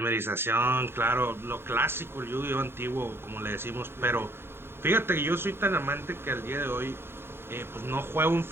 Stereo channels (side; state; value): left; late; 0.11 ms